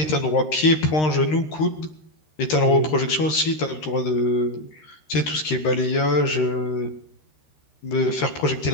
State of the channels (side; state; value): right; late; 13 ms